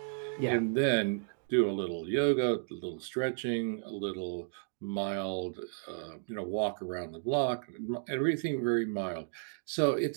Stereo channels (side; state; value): left; silent; digital silence